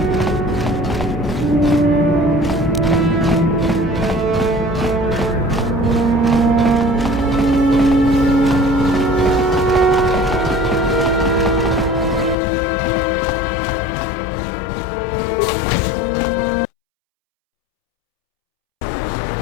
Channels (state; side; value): drops out; right; at 12.4 s